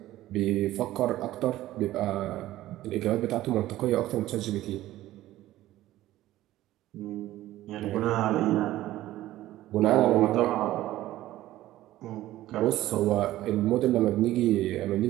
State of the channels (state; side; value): quieter; left; 15.1 dB